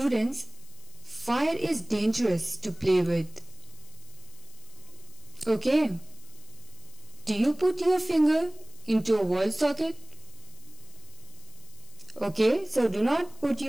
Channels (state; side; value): noise; left; hiss, 23 dB below the sound